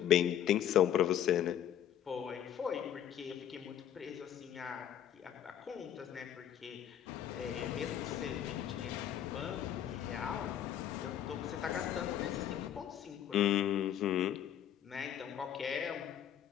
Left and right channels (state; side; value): quieter; right; 10.5 dB